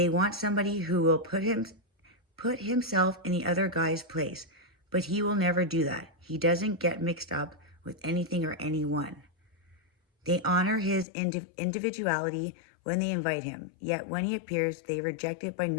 want somebody who will put himself in the other guy's place, but he will never do that. He doesn't get mixed up with anything or anyone. They honor his individuality when they invite him, yet when he appears, they reject it by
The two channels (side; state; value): right; drops out; at 11.1 s